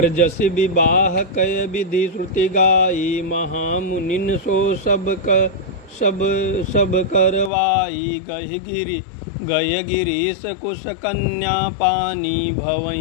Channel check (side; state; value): right; drops out; at 7.5 s